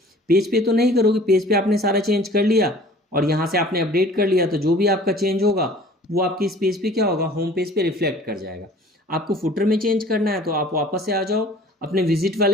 पेज पे तो नहीं करोगे, पेज पे आपने सारा चेंज कर लिया और यहाँ से आपने अपडेट कर लिया, तो जो भी आपका चेंज होगा वो आपके इस पेज पे क्या होगा, होम पेज पे रिफ्लेक्ट कर जाएगा। आपको फुटर में चेंज करना है तो आप वापस से आ जाओ अपने विजिट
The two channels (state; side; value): normal; both; correlation 0.49